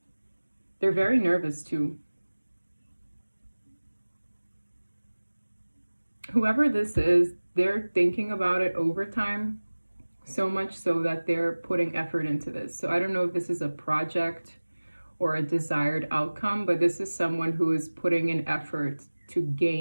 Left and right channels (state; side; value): inverted; both; correlation -1.00